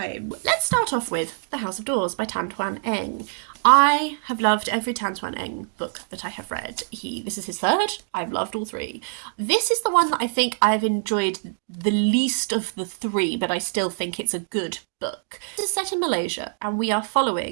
Let's start off with The House of Doors by Twan. I have loved every Twan book that I have read. This is his third. I've loved all three. This is the one that I think I've enjoyed the least of the three, but I still think it's a good book. This is set in Malaysia, and we are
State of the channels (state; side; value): silent; left; digital silence